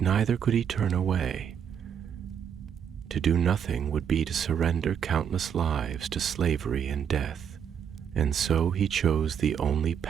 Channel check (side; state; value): left; quieter; 8.1 dB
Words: neither could he turn away. To do nothing would be to surrender countless lives to slavery and death. And so he chose the only